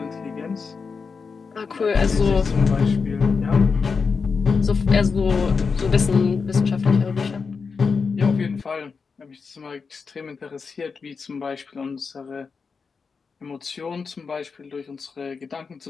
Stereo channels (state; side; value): quieter; right; 5.2 dB